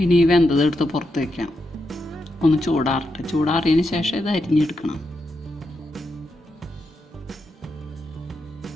ഇനി ഈ വെന്തതെടുത്ത് പുറത്ത് വയ്ക്കാം. ഒന്ന് ചൂടാറട്ടെ. ചൂടാറിയതിന് ശേഷം ഇത് അരിഞ്ഞെടുക്കണം.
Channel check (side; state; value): both; normal; correlation 0.84